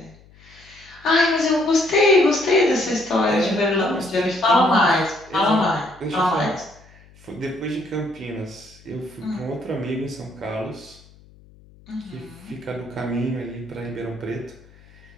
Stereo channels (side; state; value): left; noise; hum, 26 dB below the sound